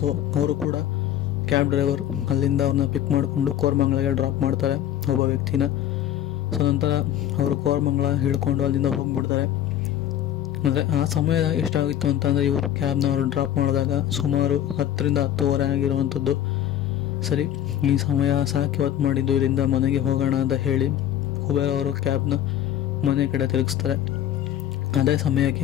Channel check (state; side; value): quieter; right; 11.3 dB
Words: ಅವರು ಕೂಡ ಕ್ಯಾಬ್ ಡ್ರೈವರ್ ಅಲ್ಲಿಂದ ಅವ್ರನ್ನ ಪಿಕ್ ಮಾಡಿಕೊಂಡು ಕೋರಮಂಗಲಗೆ ಡ್ರಾಪ್ ಮಾಡ್ತಾರೆ ಒಬ್ಬ ವ್ಯಕ್ತಿನ. ನಂತರ ಅವರು ಕೋರಮಂಗಲ ಹಿಡ್ಕೊಂಡು ಅಲ್ಲಿಂದ ಹೋಗಿಬಿಡ್ತಾರೆ. ಅಂದರೆ ಆ ಸಮಯ ಎಷ್ಟಾಗಿತ್ತು ಅಂತಂದರೆ, ಇವರು ಕ್ಯಾಬ್ನ ಅವರು ಡ್ರಾಪ್ ಮಾಡಿದಾಗ ಸುಮಾರು 10ರಿಂದ 10:15 ಆಗಿರುವಂಥದ್ದು. ಸರಿ, ಈ ಸಮಯ ಸಾಕು, ಇವತ್ತು ಮಾಡಿದ್ದು, ಇಲ್ಲಿಂದ ಮನೆಗೆ ಹೋಗೋಣ ಅಂತ ಹೇಳಿ ಕುಬೇರ ಅವರು ಕ್ಯಾಬ್ನ ಮನೆ ಕಡೆ ತಿರುಗಿಸ್ತಾರೆ. ಅದೇ